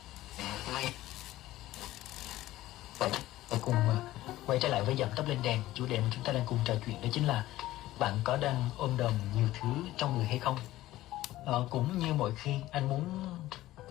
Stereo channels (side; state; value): right; quieter; 15.8 dB